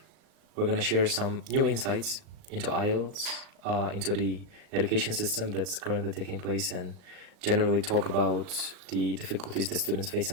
We're going to share some new insights into IELTS, into the education system that's currently taking place, and generally talk about the difficulties the students face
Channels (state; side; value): late; left; 38 ms